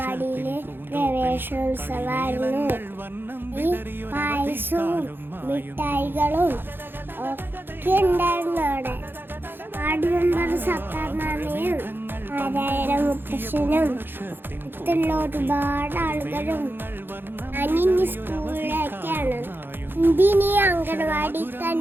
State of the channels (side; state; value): left; late; 0.10 ms